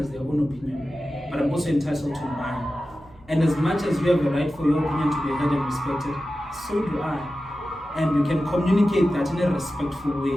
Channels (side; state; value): right; noise; hum, 26 dB below the sound